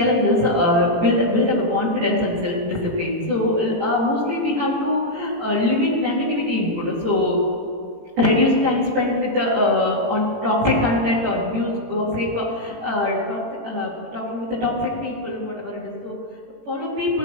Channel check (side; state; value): left; late; 18 ms